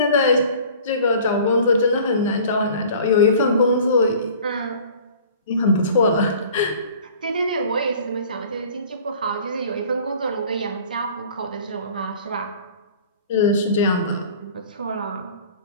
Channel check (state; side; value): inverted; both; correlation -0.47